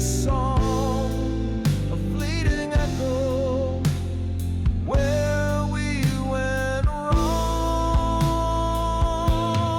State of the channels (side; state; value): both; identical; correlation 1.00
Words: a fleeting echo where we went wrong.